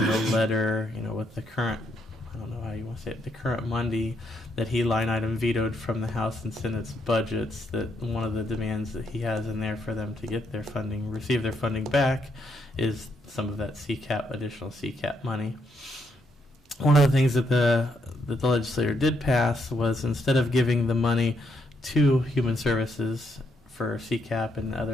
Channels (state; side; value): normal; both; correlation 0.76